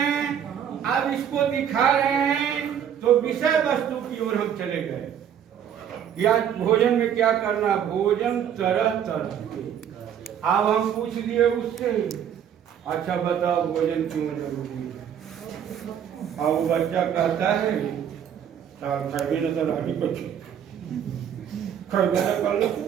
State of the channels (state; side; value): quieter; left; 9.0 dB